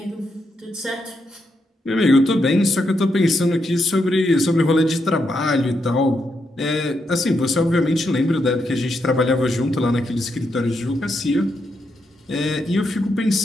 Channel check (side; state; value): both; normal; correlation 0.81